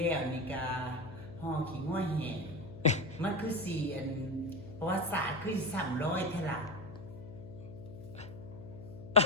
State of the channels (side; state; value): left; noise; hum, 13 dB below the sound